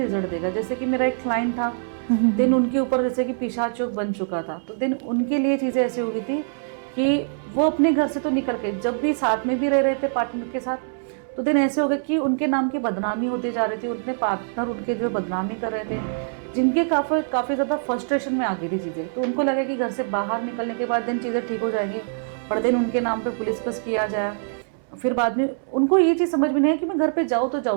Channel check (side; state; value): left; silent; 63 dB below the other